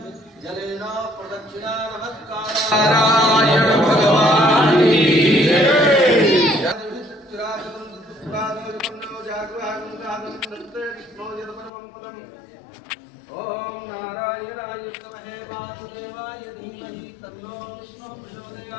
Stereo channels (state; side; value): drops out; right; at 11.7 s